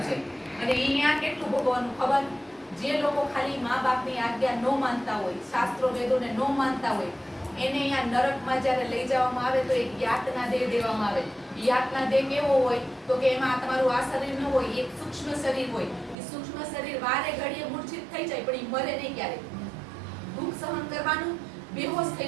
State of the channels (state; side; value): drops out; left; at 16.2 s